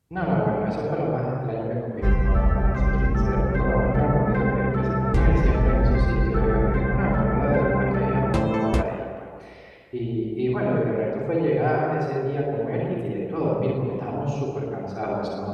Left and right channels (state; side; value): identical; both; correlation 1.00